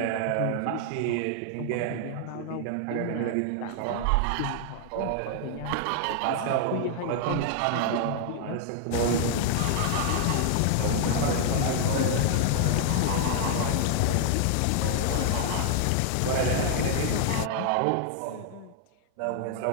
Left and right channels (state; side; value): different; both; correlation 0.00